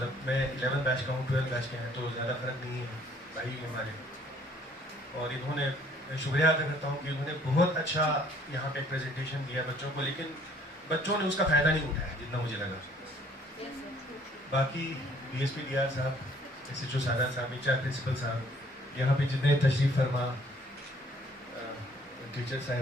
मैं 11 बैच का हूँ, 12 बैच के हैं, तो ज़्यादा फर्क नहीं है, भाई हमारे। और इन्होंने शुक्रिया अदा करता हूँ कि उन्होंने बहुत अच्छा यहाँ पे प्रेजेंटेशन दिया बच्चों को, लेकिन बच्चों ने उसका फ़ायदा नहीं उठाया जितना मुझे लगा। बाकी DSP DR साहब, SHO सादा साहब, HR प्रिंसिपल साहब, यहाँ पे जितने तशरीफ फरमा टीचर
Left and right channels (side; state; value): both; normal; correlation 0.59